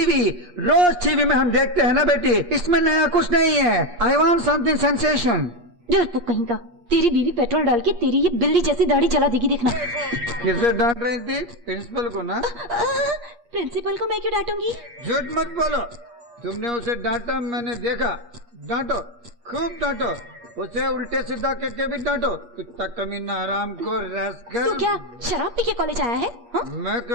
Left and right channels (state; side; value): late; left; 8.5 ms